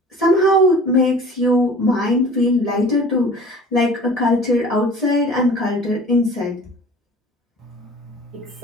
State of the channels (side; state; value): both; normal; correlation 0.44